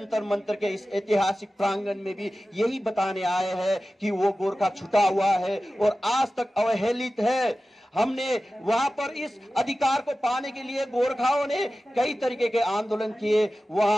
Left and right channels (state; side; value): normal; both; correlation 0.95